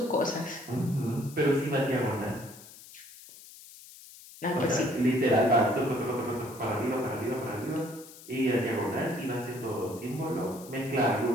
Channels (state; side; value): noise; left; hiss, 18 dB below the sound